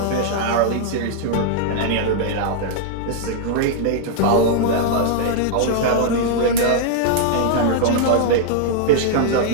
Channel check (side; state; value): both; different; correlation -0.01